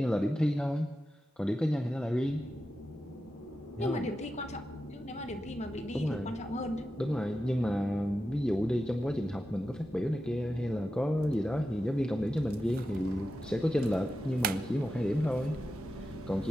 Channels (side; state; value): both; normal; correlation 0.90